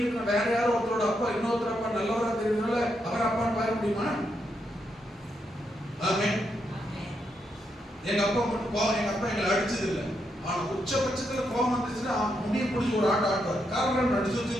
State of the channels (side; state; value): both; normal; correlation 0.81